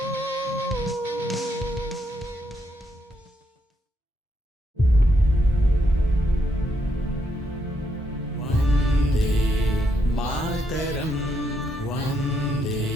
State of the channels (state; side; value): normal; both; correlation 0.77